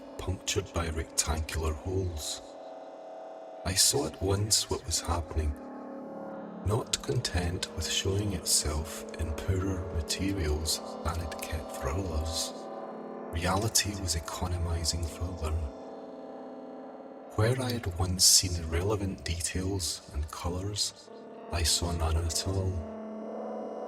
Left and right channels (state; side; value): identical; both; correlation 1.00